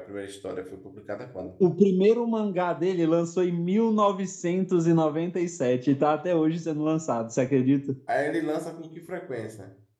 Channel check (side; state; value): both; identical; correlation 1.00